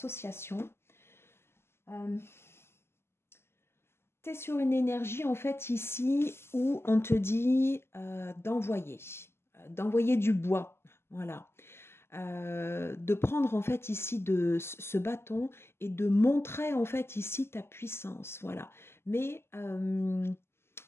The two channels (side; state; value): right; late; 0.12 ms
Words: Tu es sur une énergie en fait ici où on te dit d'envoyer du bois. Voilà. De prendre en fait ici ce bâton et de montrer en fait ici ta puissance, voilà. Mais